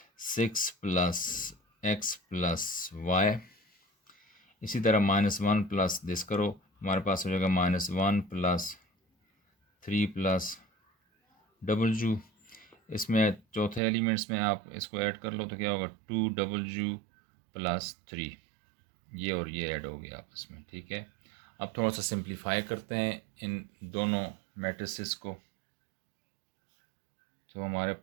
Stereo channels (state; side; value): drops out; left; at 13.8 s